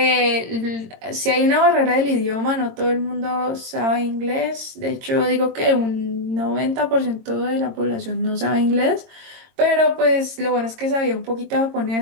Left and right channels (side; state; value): left; late; 22 ms